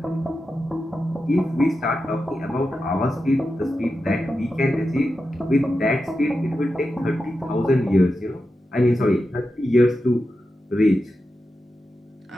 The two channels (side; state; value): both; normal; correlation 0.90